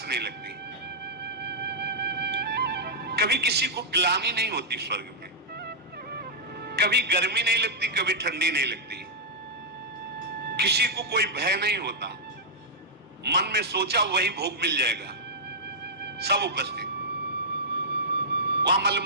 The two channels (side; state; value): both; normal; correlation -0.09